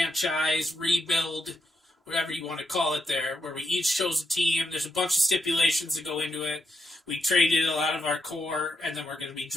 rebuild, whatever you want to call it there, where we each chose a team. There's a bunch of stipulations that go into it. We traded a lot of our core, and then we're going to be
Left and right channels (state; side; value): normal; both; correlation 0.82